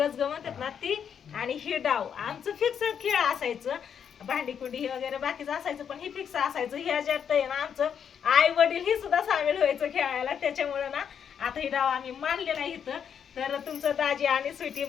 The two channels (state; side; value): quieter; right; 7.9 dB